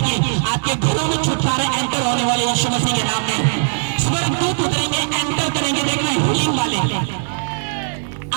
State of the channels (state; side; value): silent; left; digital silence